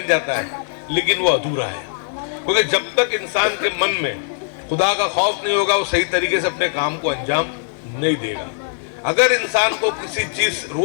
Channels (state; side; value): silent; right; 57 dB below the other